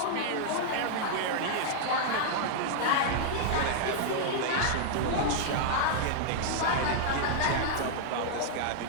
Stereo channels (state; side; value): different; both; correlation -0.01